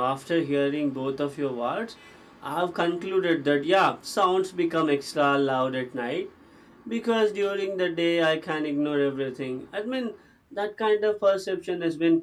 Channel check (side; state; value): both; identical; correlation 1.00